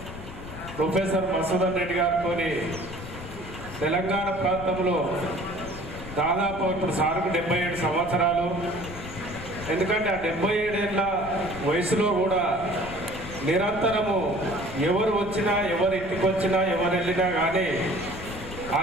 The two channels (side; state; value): left; noise; rumble, 12 dB below the sound